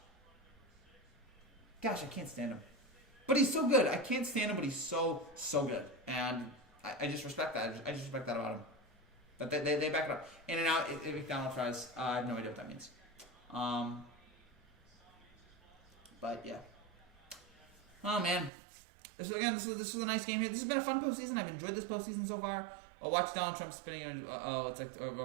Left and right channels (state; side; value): drops out; left; at 18.5 s